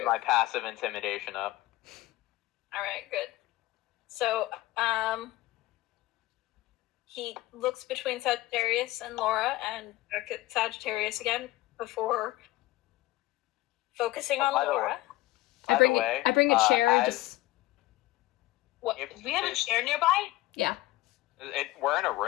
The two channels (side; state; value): right; quieter; 17.7 dB